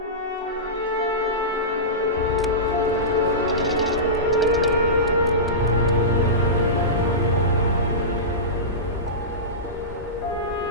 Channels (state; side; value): normal; both; correlation -0.18